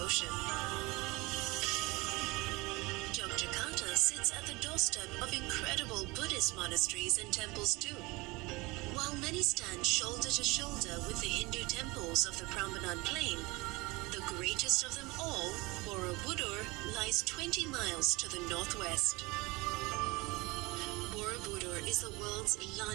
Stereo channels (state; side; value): quieter; left; 23.7 dB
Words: Yogyakarta sits at the doorstep of incredible Buddhist monasteries and temples too. While many stand shoulder to shoulder with the Hindu temples of the Prambanan Plain, the greatest of them all, Borobudur, lies 20 miles to the northwest. Borobudur is the world's